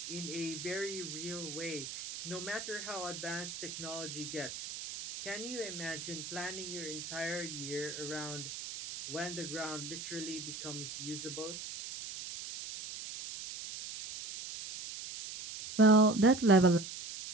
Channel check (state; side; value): noise; right; hiss, 8 dB below the sound